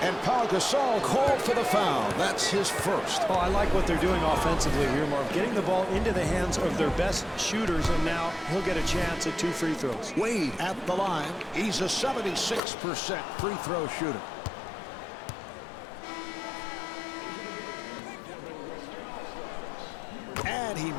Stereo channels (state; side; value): drops out; right; at 12.6 s